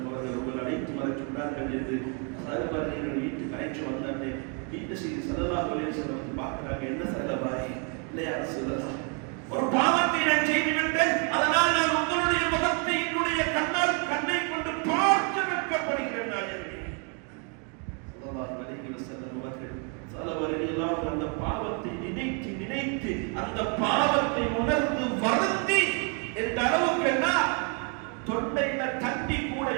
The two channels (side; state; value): left; quieter; 37.8 dB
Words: அவர்கள் உங்கள் அழைத்து வர சொன்னார்கள் என்று சஹாபாக்கள் வீட்டுக்கு அழைத்து வந்தாங்க. வீட்டு செய்தி ஸல்லல்லாஹு அலைஹி வஸல்லம் பார்க்கிறாங்க. என்ன சஹாபாய் இல்லையா ரசூலுல்லாஹ், ஒரு பாவத்தை நான் செய்துவிட்டேன், அதனால் நான் உங்களுடைய முகத்தை என்னுடைய கண்ணை கொண்டு பார்த்து வெட்கப்படுகிறேன். நான் ஸல்லல்லாஹு அலைஹி வஸல்லம் அவர்கள் சலவரையெல்லாம் அந்த பாவத்தை நினைத்து அந்த பாவத்தை உணர்ந்து வருந்தி என்ற அளவுக்கு என்ன தொண்டையில தண்ணி கூட